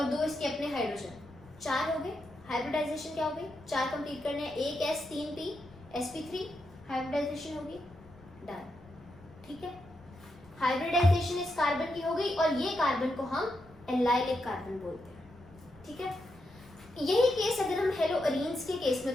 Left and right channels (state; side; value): noise; left; rumble, 23 dB below the sound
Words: दो इसके अपने हाइड्रोजन. 4 हो गए. हाइब्रिडाइजेशन क्या हो गई? 4 कंप्लीट करने हैं. एक S 3 P sp3 हाइब्रिडाइजेशन होगी. डन. ठीक है. हाइब्रिडाइजेशन इस कार्बन की हो गई और ये कार्बन को हम एलाइलिक कार्बन बोलते हैं. ठीक है. यही केस अगर हम हेलो अरीन्स के केस में